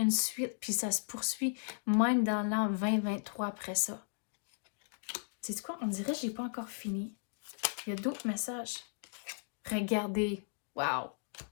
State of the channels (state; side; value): silent; right; digital silence